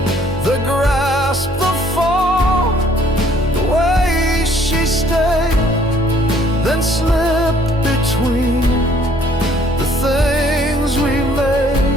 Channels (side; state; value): both; normal; correlation 0.61